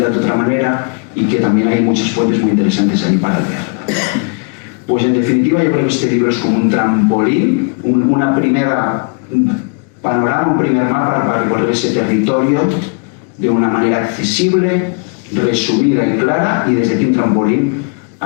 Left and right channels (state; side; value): quieter; right; 36.4 dB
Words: de otra manera, y que también hay muchas fuentes muy interesantes ahí para leer. Pues en definitiva yo creo que este libro es como un trampolín, un panorama, un primer mapa para recorrer ese territorio de una manera accesible, resumida y clara, y desde aquí un trampolín